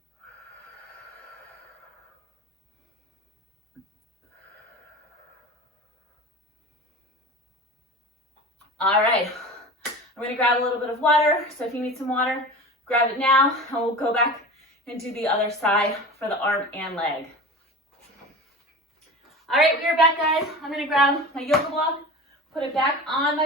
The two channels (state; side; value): normal; both; correlation 0.33